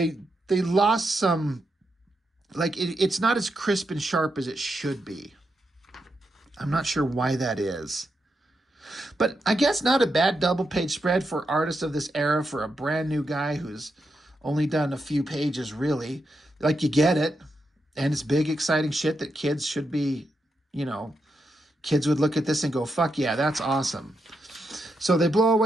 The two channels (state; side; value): normal; both; correlation 0.84